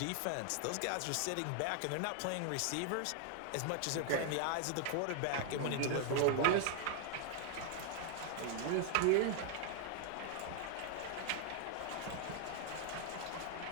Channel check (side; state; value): both; different; correlation 0.00